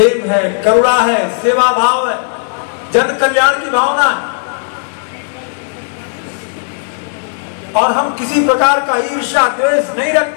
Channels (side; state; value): right; silent; digital silence